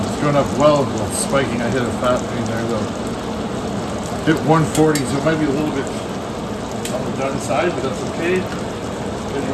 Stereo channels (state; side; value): identical; both; correlation 1.00